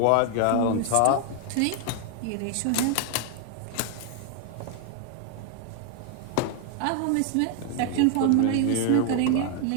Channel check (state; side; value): different; both; correlation 0.00